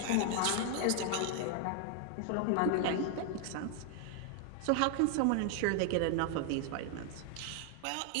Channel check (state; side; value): different; both; correlation 0.00